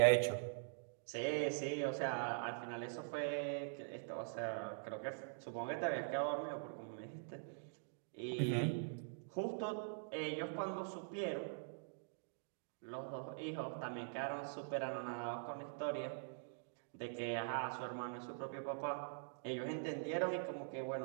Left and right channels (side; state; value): left; silent; digital silence